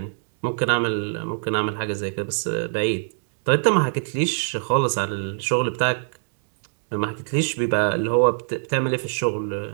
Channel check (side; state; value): left; silent; digital silence